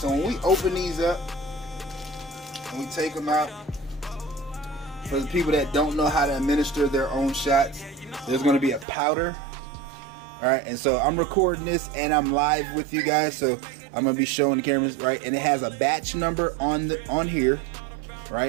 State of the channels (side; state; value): left; drops out; at 8.8 s